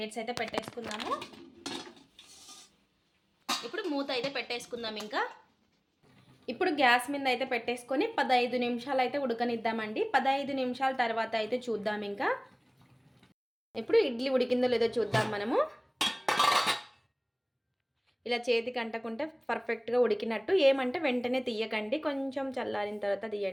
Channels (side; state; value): both; identical; correlation 1.00